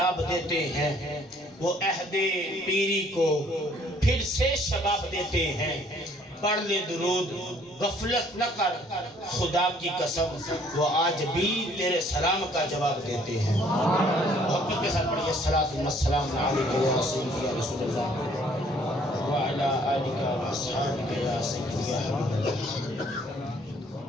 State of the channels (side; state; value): both; normal; correlation 0.61